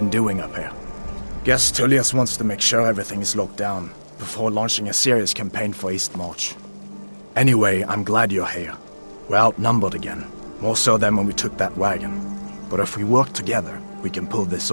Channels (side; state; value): both; inverted; correlation -1.00